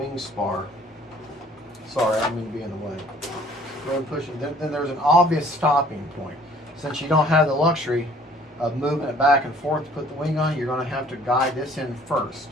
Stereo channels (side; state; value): both; normal; correlation 0.55